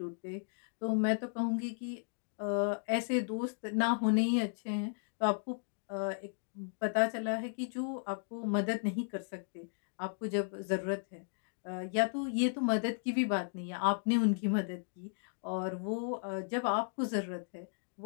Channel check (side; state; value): right; silent; digital silence